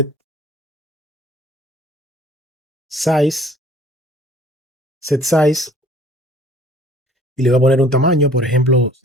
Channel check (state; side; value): normal; both; correlation 0.54